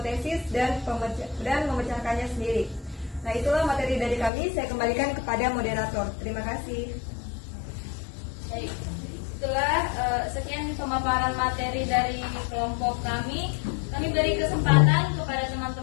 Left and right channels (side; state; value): right; drops out; at 4.3 s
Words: dan memecahkannya sendiri. Nah, itulah materi dari kami. Saya kembalikan kepada moderator. Terima kasih. Baik, setelah sekian pemaparan materi dari kelompok kami beri kesempatan kepada